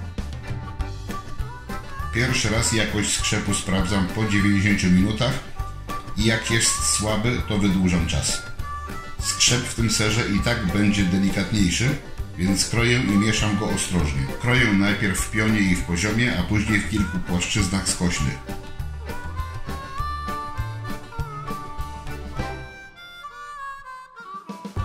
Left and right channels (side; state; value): both; identical; correlation 1.00